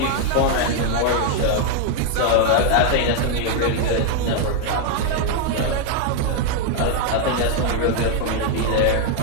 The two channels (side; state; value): both; different; correlation 0.00